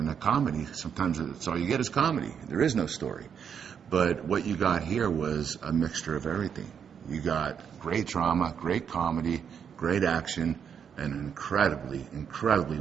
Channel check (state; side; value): quieter; left; 7.5 dB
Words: a comedy, sometimes it's all you get is comedy. There is no story. But what you got here was a mixture of everything. You got great drama, great comedy, great action, and an incredibly